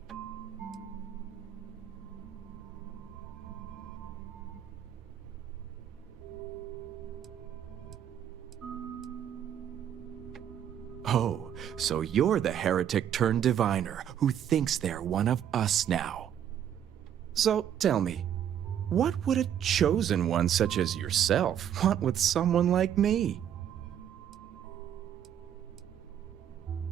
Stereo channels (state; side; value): quieter; left; 9.7 dB